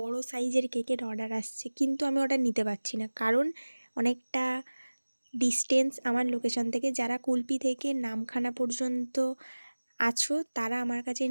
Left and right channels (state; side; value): inverted; both; correlation -1.00